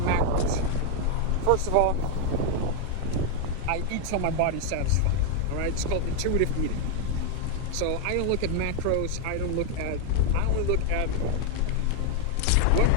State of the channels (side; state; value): both; different; correlation 0.00